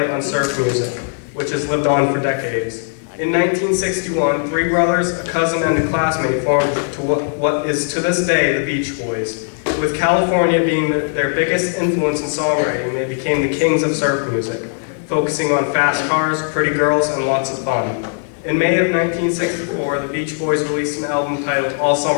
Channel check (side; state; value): right; silent; digital silence